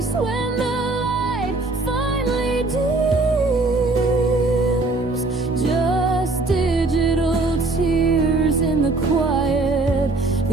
when the light finally dims. Just digital tears in the quiet,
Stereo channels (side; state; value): left; quieter; 3.2 dB